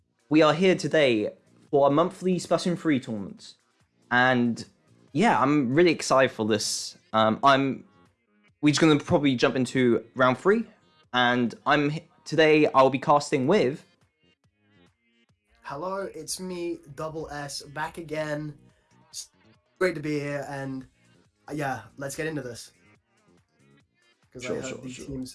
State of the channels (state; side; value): identical; both; correlation 1.00